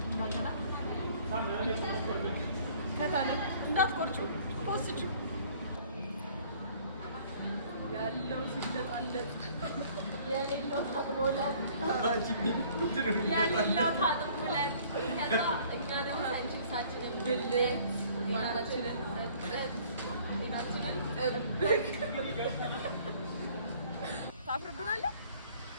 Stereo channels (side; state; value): both; inverted; correlation -0.56